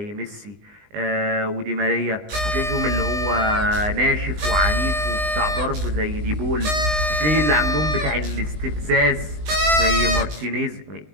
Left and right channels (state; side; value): late; left; 20 ms